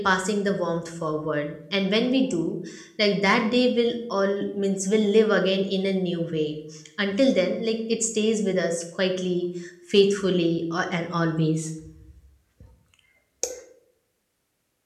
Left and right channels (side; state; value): both; identical; correlation 1.00